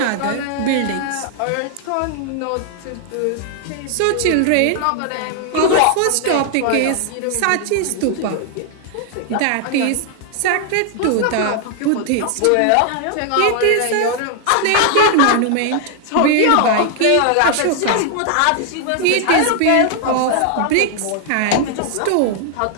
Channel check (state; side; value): different; both; correlation 0.00